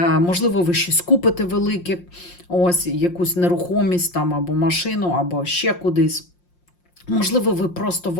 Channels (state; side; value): late; right; 5.6 ms